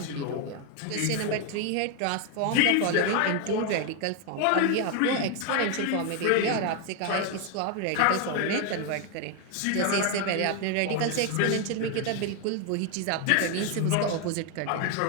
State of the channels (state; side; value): different; both; correlation 0.01